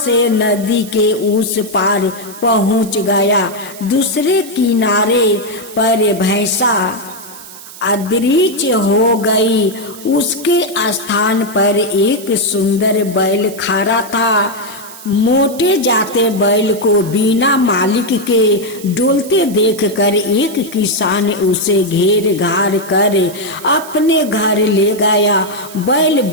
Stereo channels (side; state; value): right; noise; hiss, 17 dB below the sound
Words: नदी के उस पार पहुंच गया। दूसरे किनारे पर भैंसा अदृश्य हो गई। उसके स्थान पर एक सुंदर बैल खड़ा था। मोटे जाते बैल को बिना मालिक के डोलते देखकर एक किसान उसे घेर घार कर अपने घर ले गया। बैल